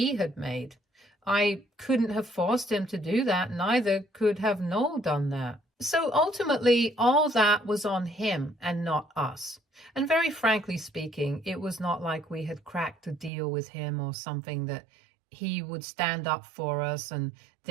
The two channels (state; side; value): drops out; left; at 13.3 s